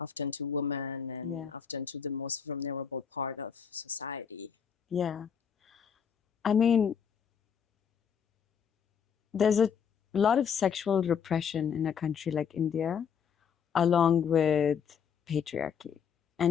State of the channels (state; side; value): quieter; right; 7.2 dB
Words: often to women and Yeah. often to the most vulnerable part of society. Yeah. I mean, there's a lot of sexual repression in a country like India, along with patriarchy.